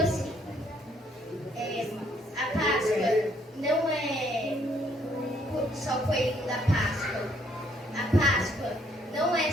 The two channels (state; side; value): normal; both; correlation 0.68